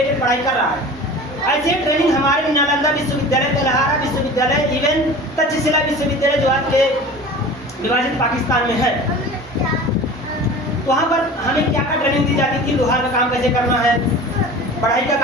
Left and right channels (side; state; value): both; normal; correlation 0.38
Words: पढ़ाई कर रहा है। ऐसे ट्रेनिंग हमारे नालंदा विश्वविद्यालय, तेलहारा विश्वविद्यालय, इवन तक्षशिला विश्वविद्यालय जो आज के विभाजित पाकिस्तान में है, वहाँ पर हमें क्या क्या ट्रेनिंग दी जाती थी? लोहार का काम कैसे करना है, पढ़ाई का